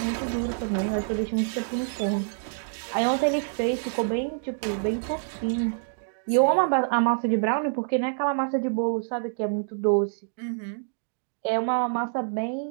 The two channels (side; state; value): left; silent; digital silence